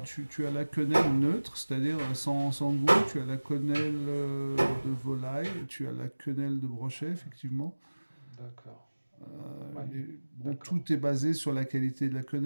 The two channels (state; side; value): inverted; both; correlation -1.00